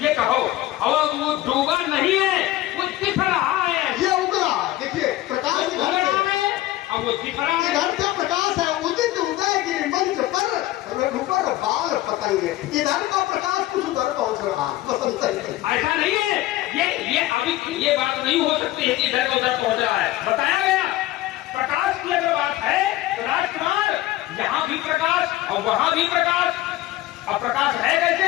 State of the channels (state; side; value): quieter; right; 15.8 dB